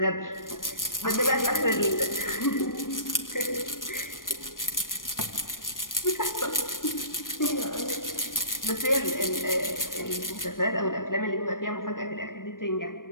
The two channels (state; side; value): late; right; 0.90 ms